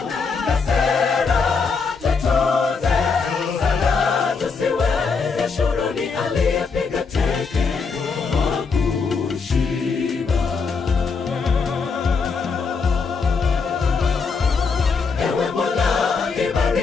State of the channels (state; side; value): quieter; right; 5.0 dB